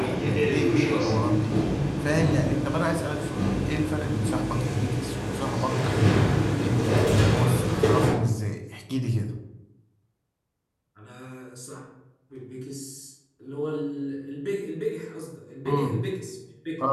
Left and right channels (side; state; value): both; identical; correlation 1.00